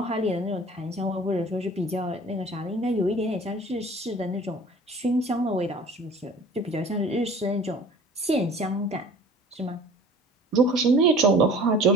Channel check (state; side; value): normal; both; correlation 0.46